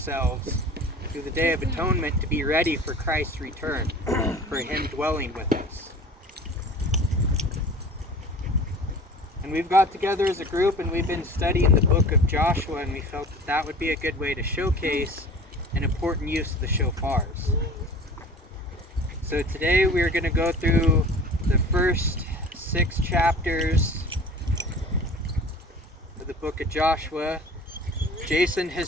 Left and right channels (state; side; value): normal; both; correlation 0.42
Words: through the Day of Atonement to be ready for Christ's return, for Him dwelling with us. And we've got together as a group and we've been studying the book of Joshua, and we felt that that would be a good way to showcase an important use of the shofars. So today we are going to go through the first 6 chapters of the book of Joshua. Jason